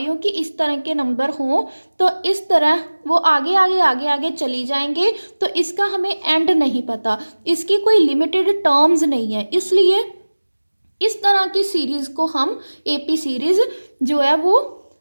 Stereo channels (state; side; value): inverted; both; correlation -1.00